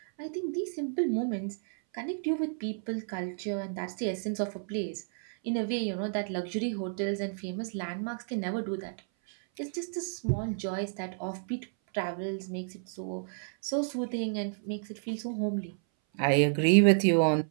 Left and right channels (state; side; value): silent; left; 57 dB below the other